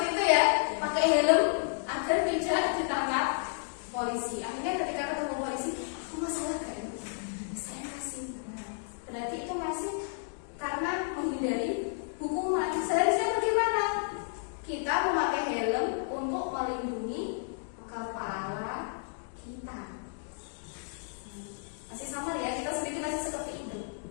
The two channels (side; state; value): right; silent; digital silence